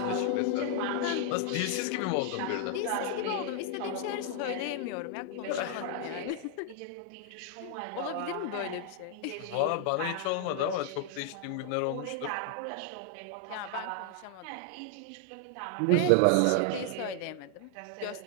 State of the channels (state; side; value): different; both; correlation 0.00